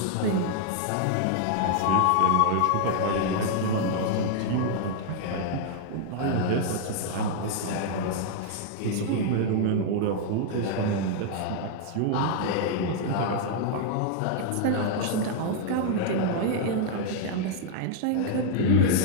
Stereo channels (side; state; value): both; different; correlation 0.00